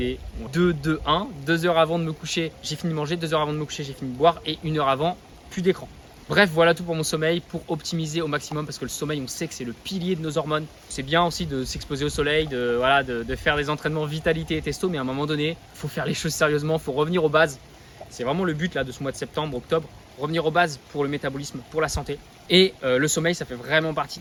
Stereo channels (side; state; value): both; identical; correlation 1.00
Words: 2-2-1. 2 heures avant de me coucher, j'ai fini de manger, 2 heures avant de me coucher, j'ai fini de boire, et 1 heure avant, plus d'écran. Bref, voilà tout pour mon sommeil, pour optimiser au maximum, parce que le sommeil, on sait que c'est le pilier de nos hormones. C'est bien aussi de s'exposer au soleil, de faire des entraînements vitalité et testo, mais à un moment donné, il faut faire les choses sérieusement, il faut revenir aux bases. C'est vraiment le but là, de ce mois de septembre, octobre, revenir aux bases pour le métabolisme, pour la santé. Et le sommeil, ça fait vraiment partie